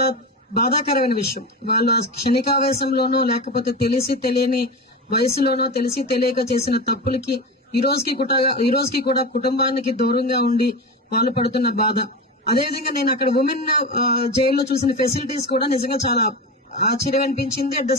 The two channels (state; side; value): normal; both; correlation 0.24